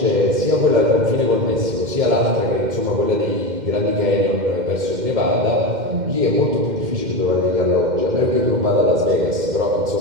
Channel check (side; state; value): left; late; 2.1 ms